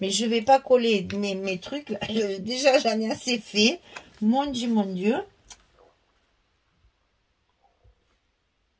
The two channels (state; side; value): identical; both; correlation 1.00